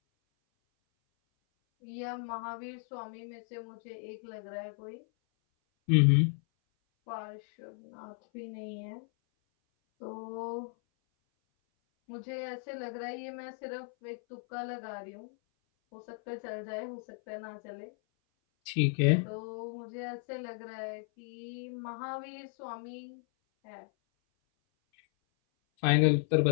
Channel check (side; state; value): right; silent; 55 dB below the other